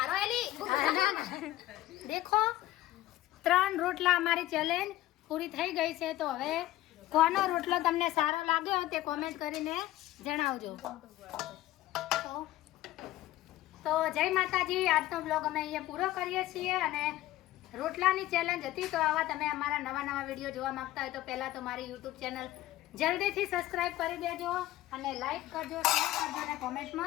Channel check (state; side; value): quieter; right; 15.6 dB